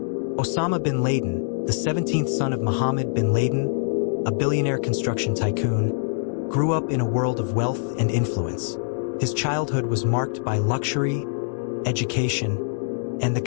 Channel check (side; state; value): right; silent; digital silence